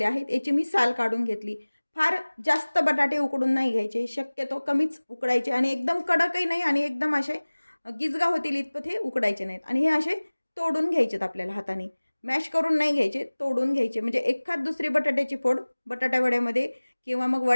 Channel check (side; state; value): both; inverted; correlation -1.00